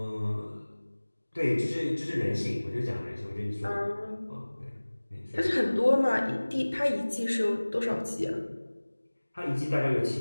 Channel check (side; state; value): both; inverted; correlation -1.00